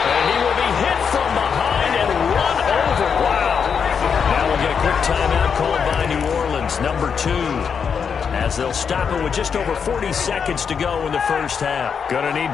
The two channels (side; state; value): right; quieter; 6.6 dB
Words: And he will be hit from behind and run over. Wow. Now we'll get a quick timeout called by New Orleans, number 2. As they'll stop it with just over 40 seconds to go in the first half. Gonna